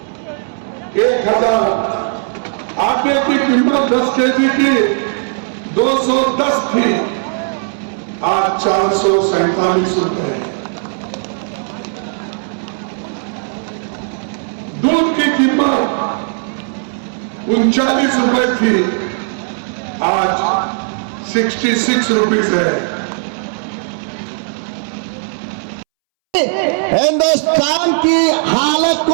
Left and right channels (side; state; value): left; silent; 66 dB below the other